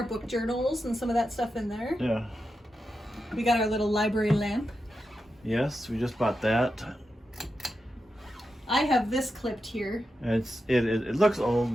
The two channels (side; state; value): both; normal; correlation 0.89